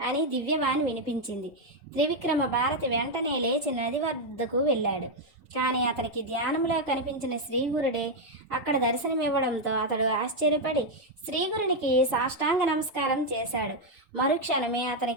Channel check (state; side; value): normal; both; correlation 0.02